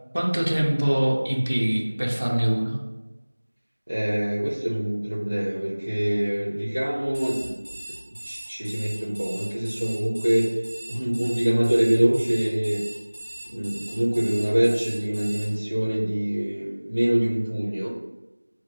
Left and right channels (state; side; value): inverted; both; correlation -1.00